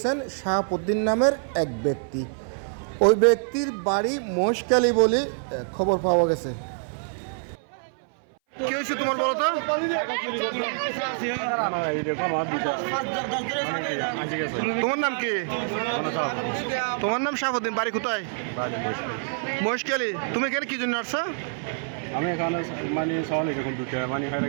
শাহাবুদ্দিন নামের এক ব্যক্তি। ওই ব্যক্তির বাড়ি মহেশখালী বলে খবর পাওয়া গেছে। কি হয়েছে তোমার বলো তো? তোমার নাম কি? তোমার নাম শাহাবুদ্দিন, বাড়ি কোথায়? মহেশখালী। তুমি এখানে কি জন্য আসছো? আমি এখানে মানে ছাগল এরকম দুটো মানে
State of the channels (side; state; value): left; silent; 58 dB below the other